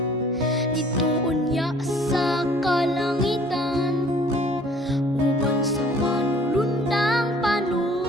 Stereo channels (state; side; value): normal; both; correlation 0.54